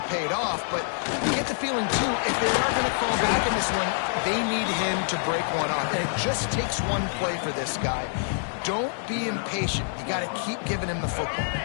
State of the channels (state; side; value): silent; right; digital silence